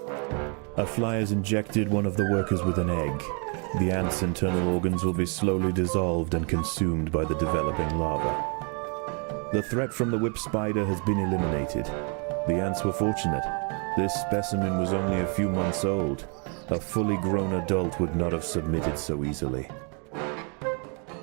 A fly has injected one of the workers with an egg. The ant's internal organs will be slowly dissolved and consumed by the developing larva. The threat from the whip spider has been eliminated. The ants were fortunate. This specimen was only a few months old. A fully grown adult would not have submitted so easily.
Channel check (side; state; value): left; quieter; 36.9 dB